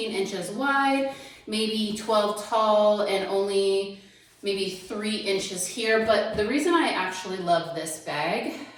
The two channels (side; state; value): both; identical; correlation 1.00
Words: inches wide, maybe 12 tall, and only maybe 3 inches here. But the reason I actually love this bag